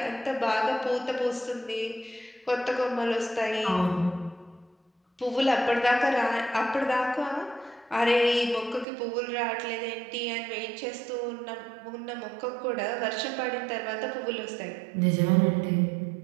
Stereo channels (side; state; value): left; drops out; at 8.8 s